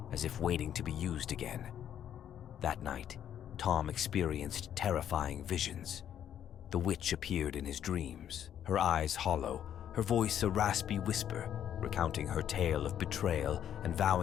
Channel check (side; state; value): right; quieter; 10.0 dB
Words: as if waiting to be used again. That night, Tom experienced terrifying visions. The witch appeared in his dreams, her eyes hollow, her voice a raspy whisper, recounting her tale of betrayal and